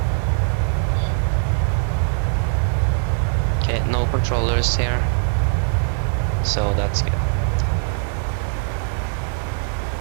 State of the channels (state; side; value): silent; left; digital silence